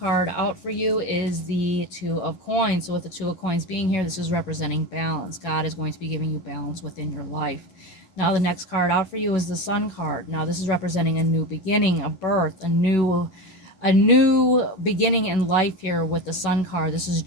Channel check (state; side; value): late; right; 11 ms